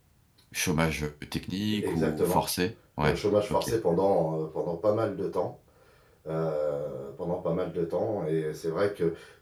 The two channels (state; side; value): identical; both; correlation 1.00